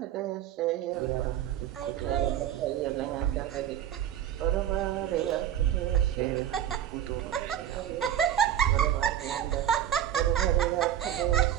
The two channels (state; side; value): quieter; left; 10.8 dB